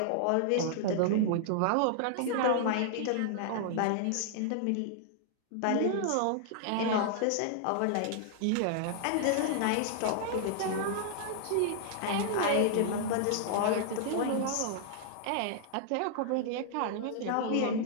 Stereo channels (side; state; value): both; different; correlation -0.01